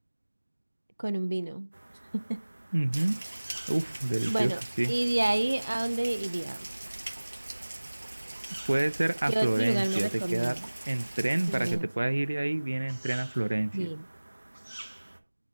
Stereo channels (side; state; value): both; inverted; correlation -1.00